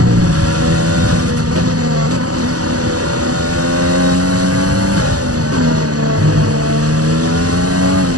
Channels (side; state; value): left; late; 0.67 ms